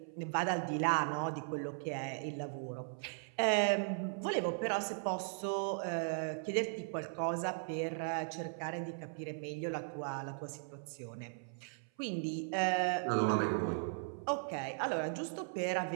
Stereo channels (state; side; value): silent; left; 53 dB below the other